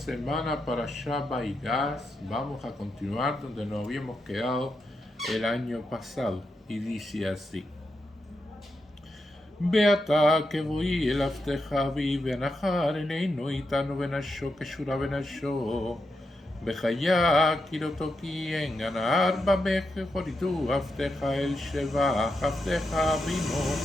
para Shabbat y Gas vamos a continuar donde nos habíamos quedado el año pasado. Y dice así. Beata que voy el afteja vi benajar eneinu itanu benasho que shura benasho. בחיה כי לא תוקי גנר במך חוריתו עבדך אל שבח עבדך אבינו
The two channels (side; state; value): both; normal; correlation 0.85